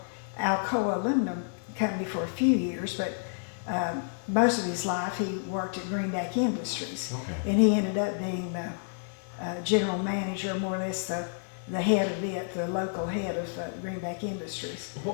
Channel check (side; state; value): right; silent; digital silence